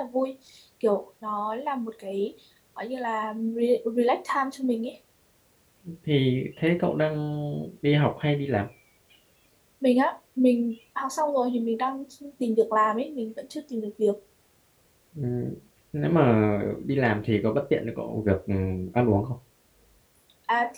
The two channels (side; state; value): both; identical; correlation 1.00